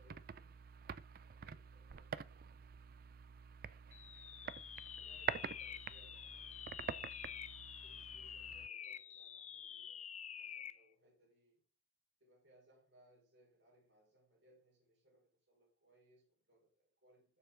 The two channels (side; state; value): both; normal; correlation 0.17